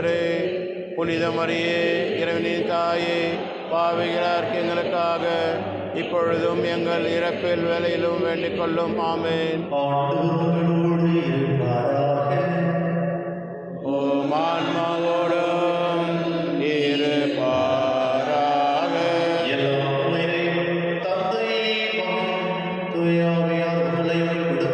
புனித மரியே, இறைவனின் தாயே, பாவிகளார்க்கு எங்களுக்காக இப்பொழுதும் எங்கள் இறப்பில் வேலையிலும் வேண்டிக் கொள்ளும். ஆமென். ஆண்டவரோடு இருப்பாராக. ஓ மான்மா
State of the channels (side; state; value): both; identical; correlation 1.00